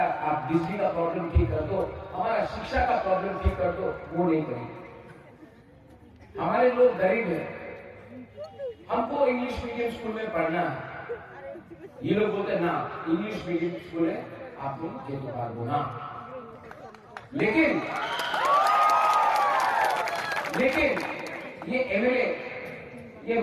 आप बिजली का प्रॉब्लम ठीक कर दो, हमारा शिक्षा का प्रॉब्लम ठीक कर दो, वो नहीं करेंगे। हमारे लोग गरीब हैं, हमको इंग्लिश मीडियम स्कूल में पढ़ना है। ये लोग बोलते ना इंग्लिश मीडियम स्कूल है, आप लोग ये तो बात बोला। लेकिन ये एमएलए, ये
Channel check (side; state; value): both; identical; correlation 1.00